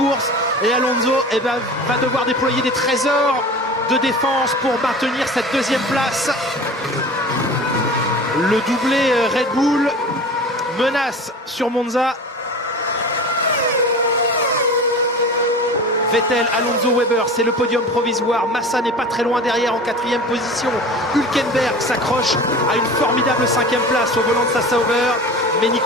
Et Alonso va devoir déployer des trésors de défense pour maintenir cette deuxième place. Le doublé Red Bull menace sur Monza. Vettel, Alonso, Weber, c'est le podium provisoire. Massa n'est pas très loin derrière en 4e position. Hülkenberg s'accroche à une formidable 5e place au volant de sa Sauber. Mais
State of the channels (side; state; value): both; normal; correlation 0.36